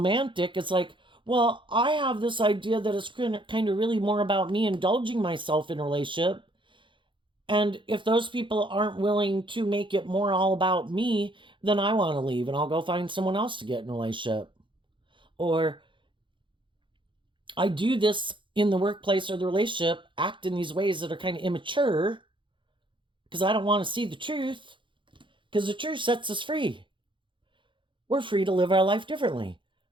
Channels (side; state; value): left; late; 0.24 ms